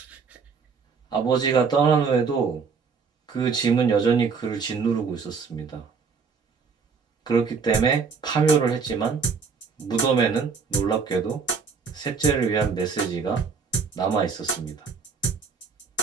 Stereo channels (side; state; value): left; quieter; 5.4 dB